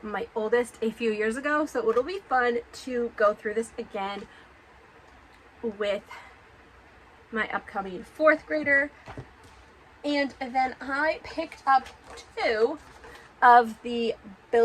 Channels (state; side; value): identical; both; correlation 1.00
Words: my oldest a few years ago, so it'll be fun to go through this again with my upcoming 4th grader. And then I picked up 2 of the